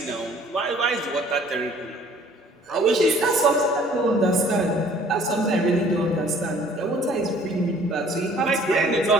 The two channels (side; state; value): both; normal; correlation 0.55